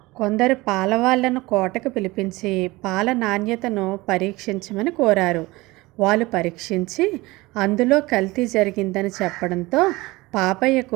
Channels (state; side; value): quieter; left; 21.2 dB